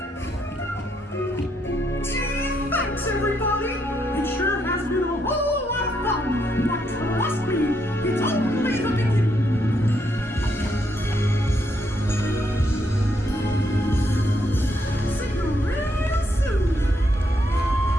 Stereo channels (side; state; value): both; normal; correlation 0.76